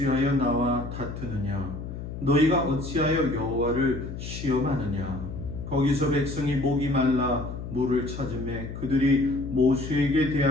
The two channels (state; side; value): noise; left; hum, 8 dB below the sound